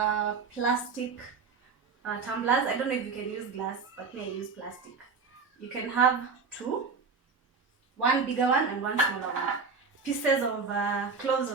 plastic tumblers. I don't know if you can use glass, but me I use plastic. You can have two, one bigger one and one smaller one. Pieces of cloves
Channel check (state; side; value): quieter; left; 5.1 dB